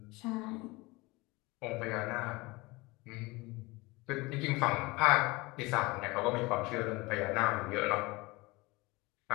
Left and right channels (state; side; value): quieter; right; 23.2 dB